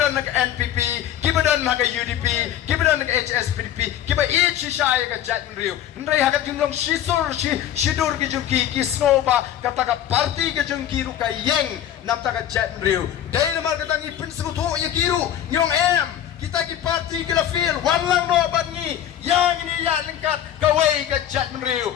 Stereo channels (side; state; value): right; quieter; 10.9 dB